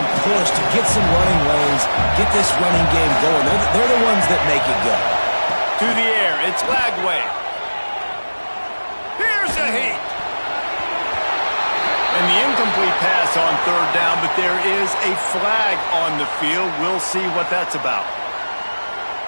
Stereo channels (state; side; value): inverted; both; correlation -1.00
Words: push to get some running lanes, get this running game going. They're the ones that make it go. To the air. It's Lagway. Here's a heat. And the incomplete pass on third down, but there is a flag on the field. We'll see what that's about.